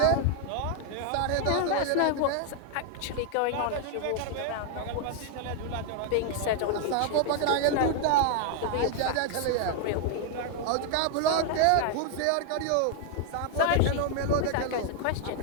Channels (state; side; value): different; both; correlation 0.00